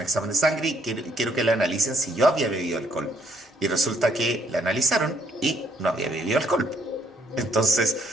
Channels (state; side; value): normal; both; correlation 0.68